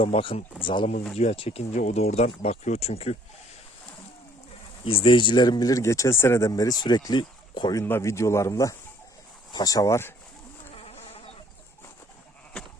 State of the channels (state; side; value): normal; both; correlation 0.60